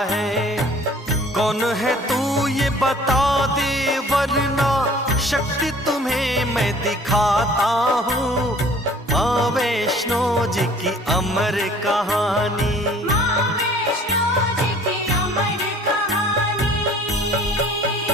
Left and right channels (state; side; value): normal; both; correlation 0.52